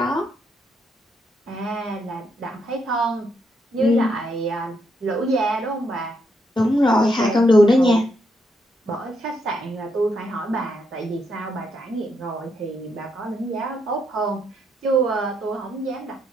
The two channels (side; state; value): both; normal; correlation 0.77